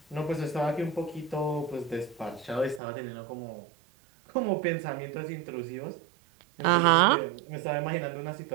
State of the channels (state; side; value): drops out; left; at 2.8 s